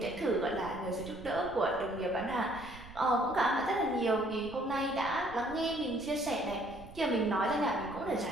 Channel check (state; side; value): noise; right; rumble, 18 dB below the sound